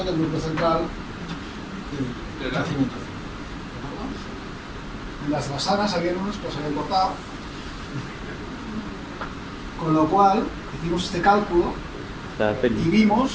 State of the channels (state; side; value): identical; both; correlation 1.00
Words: del núcleo central del crecimiento. En las basanas había unos que los habían cortado, con lo cual hicimos este cálculo y